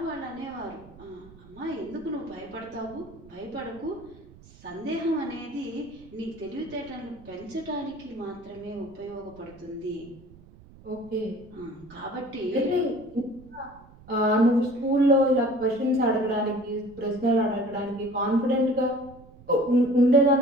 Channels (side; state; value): right; noise; rumble, 22 dB below the sound